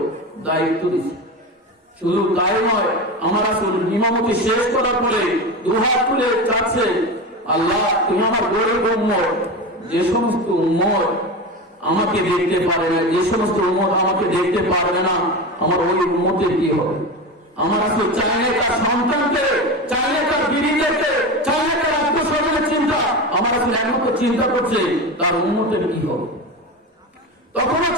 দায়িত্ব দিচ্ছে। শুধু তাই নয়, আমার রাসূল ইমামতি শেষ করার পরে দুহাত তুলে চাচ্ছে, আল্লাহ তুমি আমার গরিব উম্মত, যে সমস্ত উম্মত আমাকে দেখতে পারে না, যে সমস্ত উম্মত আমাকে দেখতে পারবে না, আমার ওই উম্মতের কি হবে? আমার রাসূল চাইলে তার সন্তানকে, চাইলে তার বিবিদেরকে, চাইলে তার আত্মস্বজনের চিন্তা, আমার রাসূল একমাত্র চিন্তা করছে তার উম্মতের কি হবে। তখনও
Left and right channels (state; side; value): normal; both; correlation 0.23